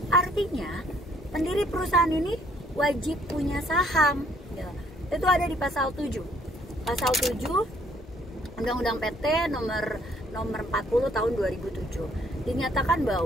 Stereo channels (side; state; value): both; normal; correlation 0.64